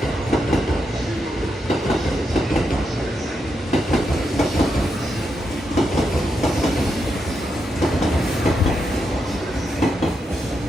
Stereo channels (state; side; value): normal; both; correlation 0.83